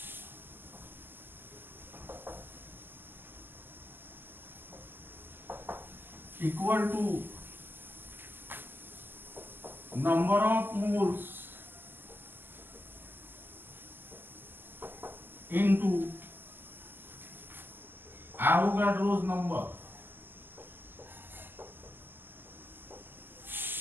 equal to number of moles into Avogadro's number.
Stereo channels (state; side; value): late; left; 0.094 ms